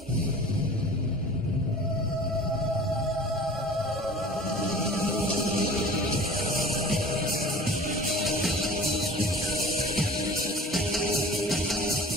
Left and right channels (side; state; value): both; normal; correlation 0.43